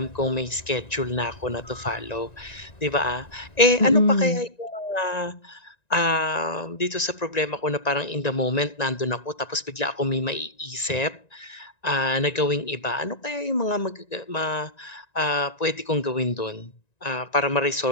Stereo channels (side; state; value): right; late; 1.9 ms